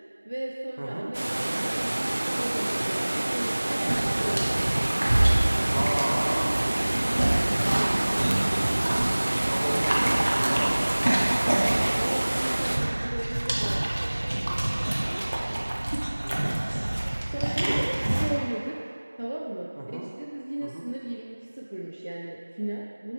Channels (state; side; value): inverted; both; correlation -1.00